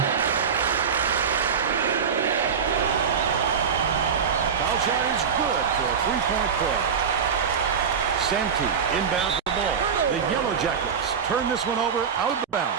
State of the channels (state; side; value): quieter; left; 6.7 dB